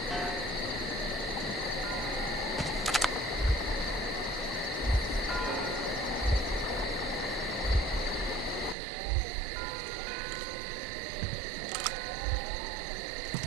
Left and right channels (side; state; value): left; drops out; at 8.8 s